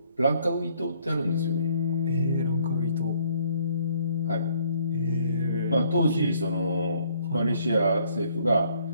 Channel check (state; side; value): inverted; both; correlation -0.65